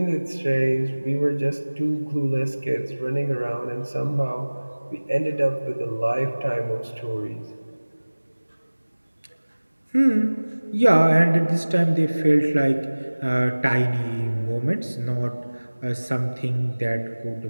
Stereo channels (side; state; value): both; inverted; correlation -1.00